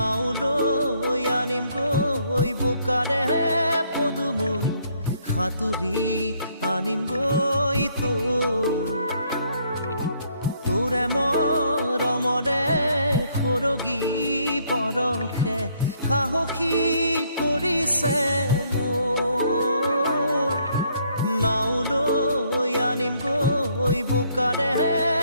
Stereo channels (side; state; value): both; inverted; correlation -0.68